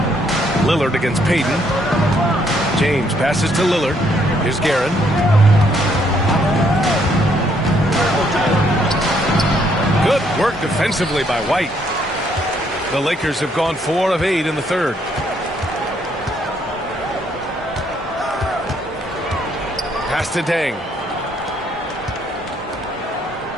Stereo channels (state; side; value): normal; both; correlation 0.70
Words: Lillard against Payton. James passes to Lillard. Here's Guerin. Good work defensively by White. The Lakers have gone 4 of 8 in the third. Pass to Deng.